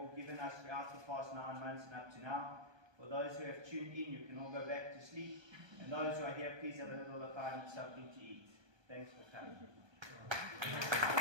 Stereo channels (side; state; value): left; late; 1.2 ms